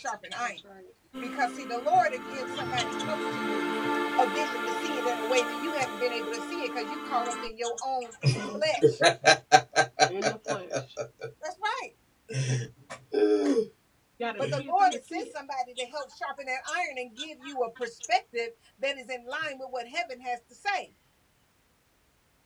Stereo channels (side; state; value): both; identical; correlation 1.00